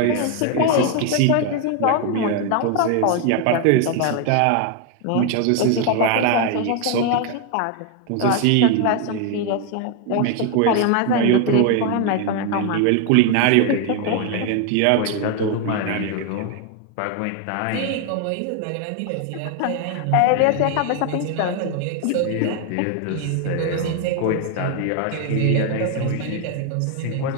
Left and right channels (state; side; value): different; both; correlation 0.01